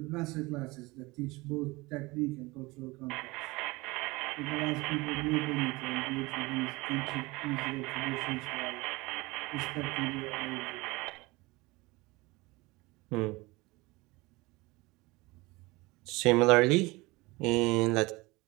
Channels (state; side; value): quieter; left; 22.8 dB